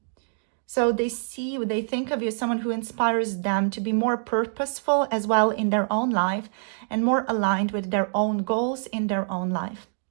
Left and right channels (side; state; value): left; silent; digital silence